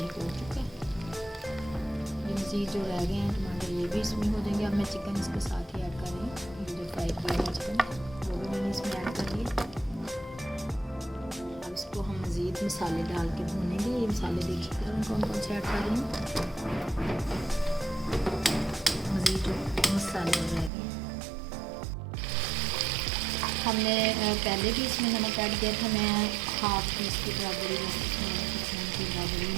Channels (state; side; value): drops out; left; at 20.7 s